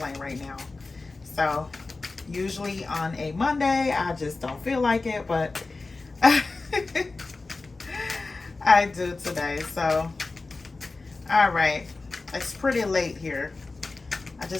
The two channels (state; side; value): quieter; right; 3.6 dB